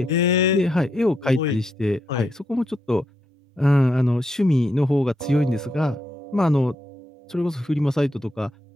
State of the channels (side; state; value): both; normal; correlation 0.81